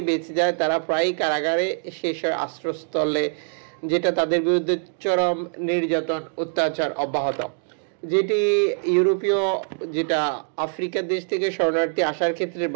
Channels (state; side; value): silent; left; 63 dB below the other